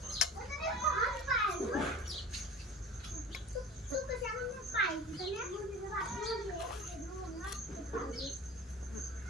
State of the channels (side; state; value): both; normal; correlation 0.37